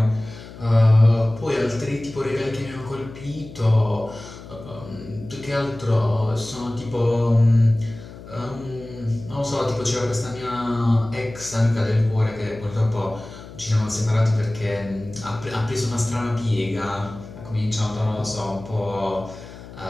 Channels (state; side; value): noise; left; hum, 15 dB below the sound